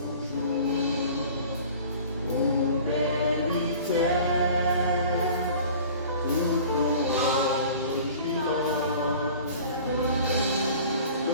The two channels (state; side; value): inverted; both; correlation -0.45